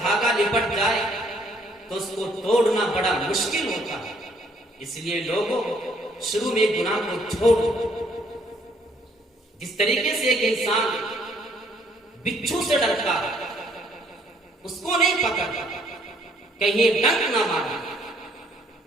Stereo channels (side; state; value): both; normal; correlation 0.65